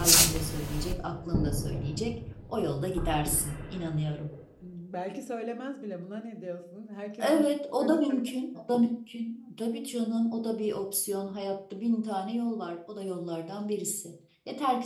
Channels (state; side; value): identical; both; correlation 1.00